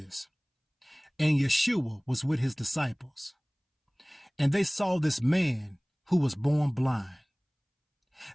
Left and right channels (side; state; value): both; identical; correlation 1.00